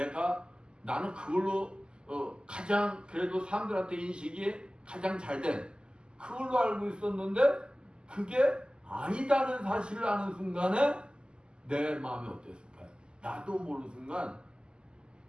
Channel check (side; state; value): left; late; 0.048 ms